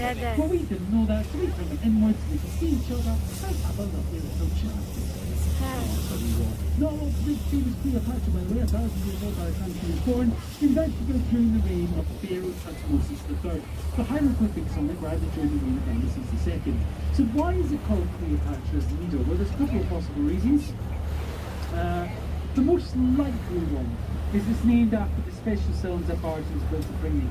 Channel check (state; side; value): identical; both; correlation 1.00